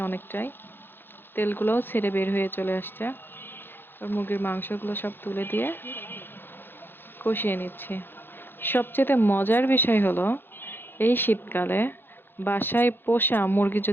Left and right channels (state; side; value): late; right; 0.10 ms